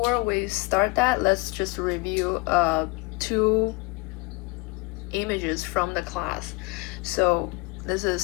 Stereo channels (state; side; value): quieter; right; 24.7 dB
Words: we start that, let's just review two images from the class. So this is